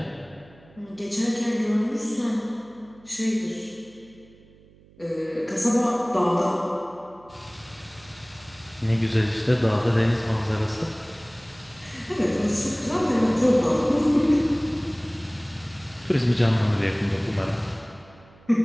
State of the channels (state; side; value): noise; right; hum, 26 dB below the sound